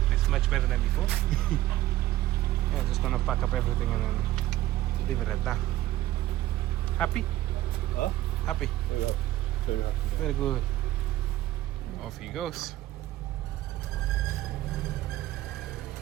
it's much better than before. Yeah, just gonna pack up everything and then leave it at that. Happy? Huh? Happy? Very happy. Very happy. Very good. Off he goes.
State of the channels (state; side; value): quieter; left; 15.3 dB